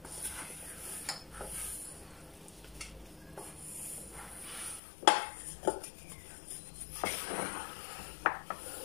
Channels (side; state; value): right; drops out; at 4.8 s